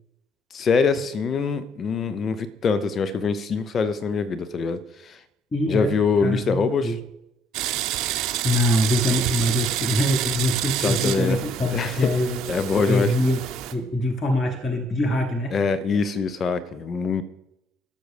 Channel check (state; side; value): normal; both; correlation 0.66